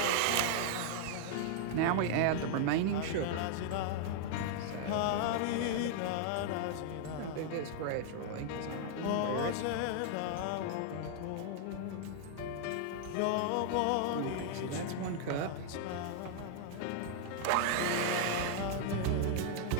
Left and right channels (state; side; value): different; both; correlation 0.00